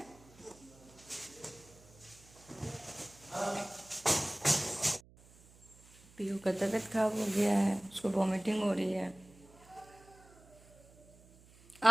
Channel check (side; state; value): right; noise; hum, 24 dB below the sound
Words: पीयू का तबीयत खराब हो गया है, उसको वॉमिटिंग हो रही है।